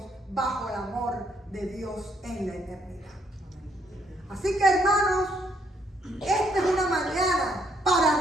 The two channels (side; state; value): both; normal; correlation 0.70